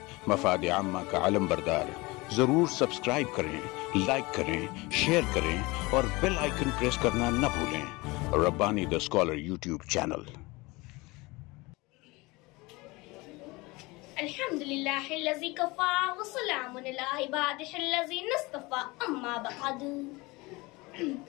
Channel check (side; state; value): right; quieter; 23.4 dB